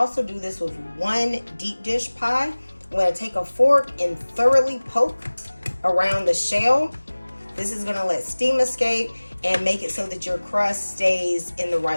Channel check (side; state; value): both; inverted; correlation -1.00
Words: do this with 1 deep dish pie. I'm gonna take a fork and thoroughly poke around the shell. This is gonna let steam escape and make it so that your crust stays in the